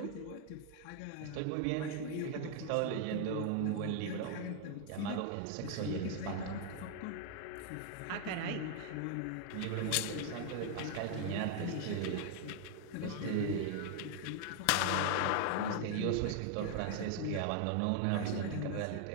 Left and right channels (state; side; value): different; both; correlation 0.00